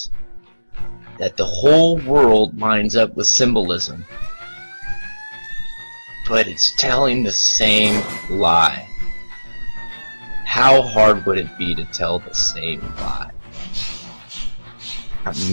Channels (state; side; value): inverted; both; correlation -1.00